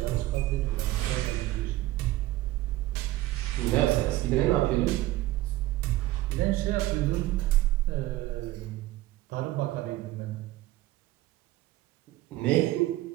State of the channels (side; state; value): left; quieter; 16.6 dB